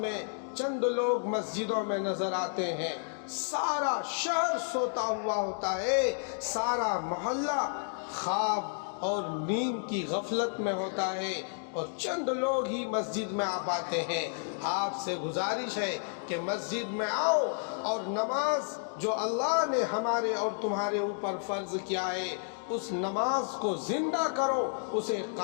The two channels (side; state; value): right; silent; digital silence